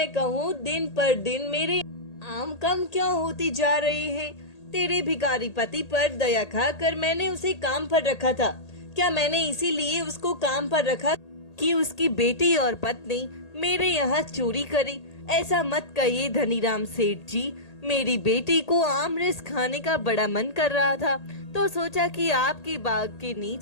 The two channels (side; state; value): right; late; 1.8 ms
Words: कहूँ दिन पर दिन मेरे आम कम क्यों होती जा रहे हैं? तेरे भिखारी पति पर दया खाकर मैंने उसे काम पर रखा था। क्या मैंने इसीलिए उसको काम पर रखा कि उसकी बेटी और पत्नी मेरे यहाँ चोरी करे? ऐसा मत कहिए धनीराम सेठ जी, मेरी बेटी को आमरस खाने का बड़ा मन कर रहा था तो सोचा कि आपके बाग के